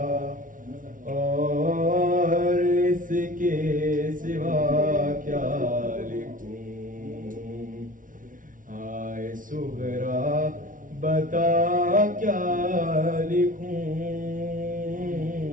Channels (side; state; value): left; late; 0.38 ms